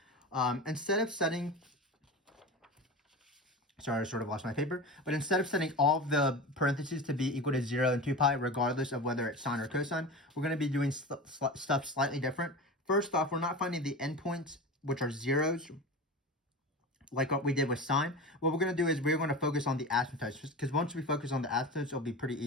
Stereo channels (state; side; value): normal; both; correlation 0.28